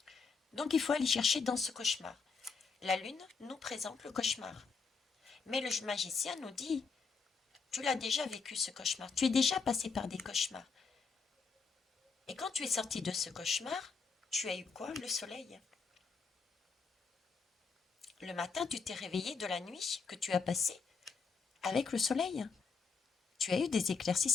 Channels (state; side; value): quieter; right; 5.0 dB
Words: Donc il faut aller chercher dans ce cauchemar. La lune nous présente le cauchemar. Mais le magicien nous dit, tu l'as déjà vécu ce cauchemar, tu es déjà passé par des cauchemars. Et quand tu es sorti de ce cauchemar, tu as eu quoi? Le soleil. Le matin, tu t'es réveillé de la nuit que tu as passée avec le soleil. Tu as eu des